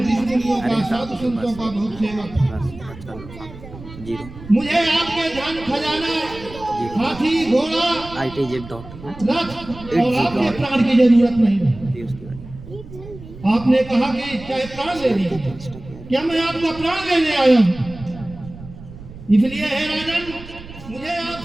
का साधु संतों का बहुत सेवक हूँ। बस चलो, हाँ, 0 मुझे आपके धन खजाना, हाथी, घोड़ा, ITZ रथ और आपके प्राण की जरूरत नहीं है। जी उसके बाद आपने कहा कि चाहे प्राण ले लीजिए, क्या मैं आपका प्राण लेने आया हूँ? इसलिए हे राजन, मुझे आप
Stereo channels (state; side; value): noise; right; rumble, 16 dB below the sound